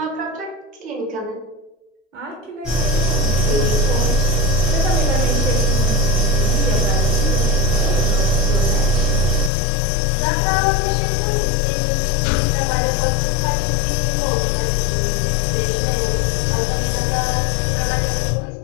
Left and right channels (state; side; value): drops out; right; at 9.5 s